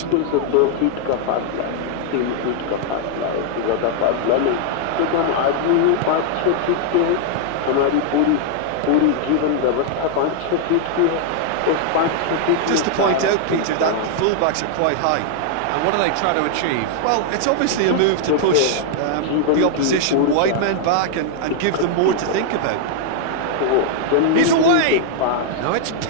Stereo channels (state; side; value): different; both; correlation 0.00